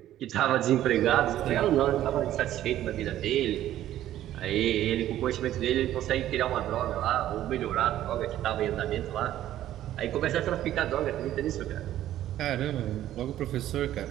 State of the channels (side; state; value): left; quieter; 12.8 dB